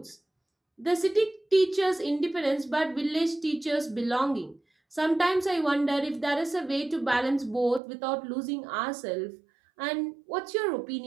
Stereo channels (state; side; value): drops out; left; at 7.8 s